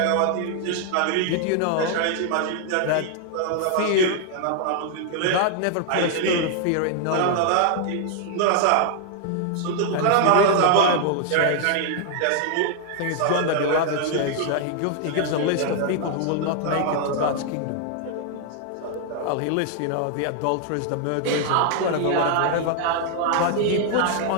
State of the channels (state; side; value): different; both; correlation 0.00